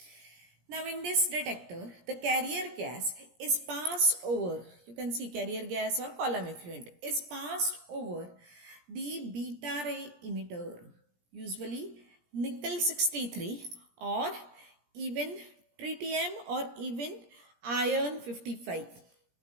Now in this detector, the carrier gas is passed over, you can see carrier gas or column effluent is passed over the beta ray emitter, usually nickel 63 or even tritium or even iron 55.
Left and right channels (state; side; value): late; left; 17 ms